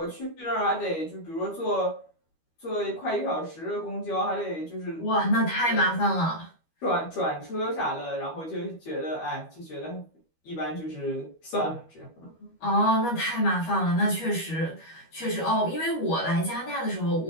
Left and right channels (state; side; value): late; right; 12 ms